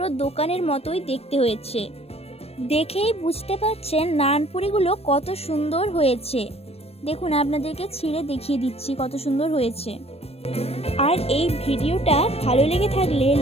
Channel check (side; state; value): right; late; 0.29 ms